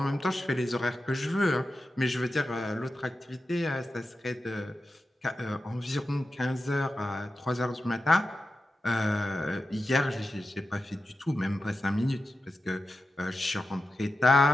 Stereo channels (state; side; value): normal; both; correlation 0.91